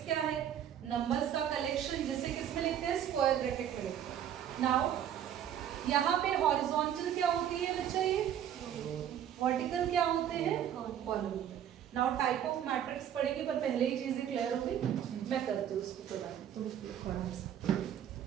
क्या है? नंबर्स का कलेक्शन, जिसे किस में लिखते हैं? स्क्वायर ब्रैकेट में लिखते हैं। नाउ यहाँ पे हॉरिजॉन्टल क्या होती है बच्चा? ये वर्टिकल क्या होते हैं? Column. Now type of matrix पढ़ेंगे, पर पहले ही चीजें क्लियर होगी। मैं करती हूँ उसको थोड़ा सा।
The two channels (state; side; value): quieter; left; 10.0 dB